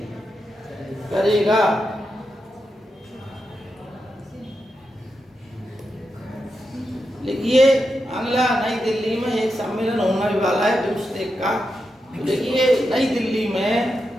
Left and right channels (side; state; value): both; normal; correlation 0.87